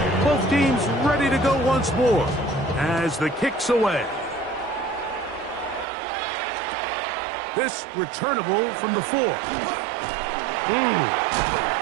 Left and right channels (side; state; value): left; drops out; at 5.9 s